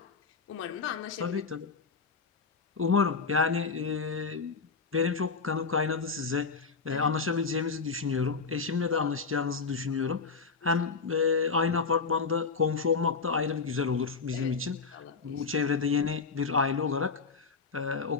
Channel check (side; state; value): right; quieter; 4.9 dB